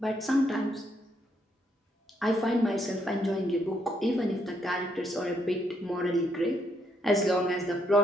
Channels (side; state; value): both; normal; correlation 0.74